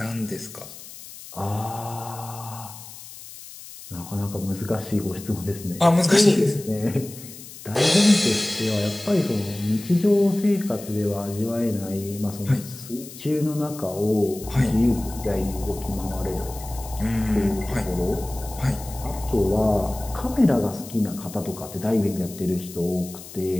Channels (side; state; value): left; noise; hiss, 15 dB below the sound